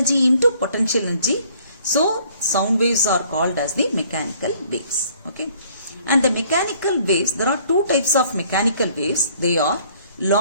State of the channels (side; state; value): both; inverted; correlation -0.59